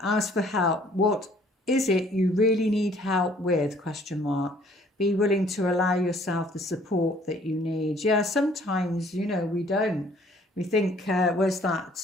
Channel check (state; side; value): normal; both; correlation 0.58